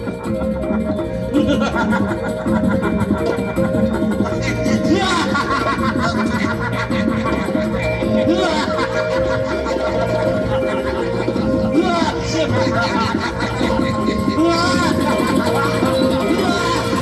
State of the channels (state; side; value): identical; both; correlation 1.00